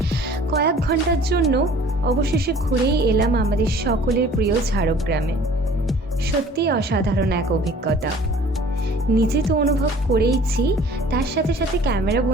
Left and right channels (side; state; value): both; normal; correlation 0.50